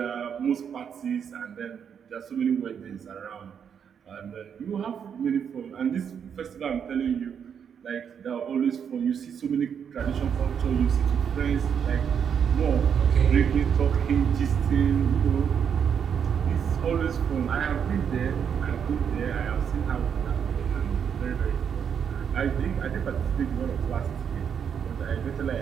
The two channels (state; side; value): quieter; left; 7.6 dB